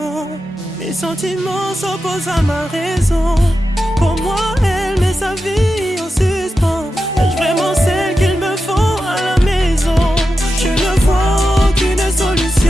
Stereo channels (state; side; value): normal; both; correlation 0.90